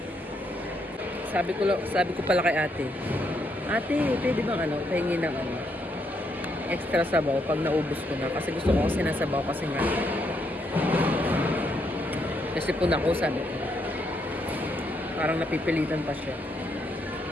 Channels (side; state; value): both; normal; correlation 0.76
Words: Sabi ko pala kay ate, pwede bang pahingi ng extra sabaw pag naubos ko na, kasi gusto ko sinasabaw kasi nga kasi po na ako, sabi ko parang napipilitan pa siya.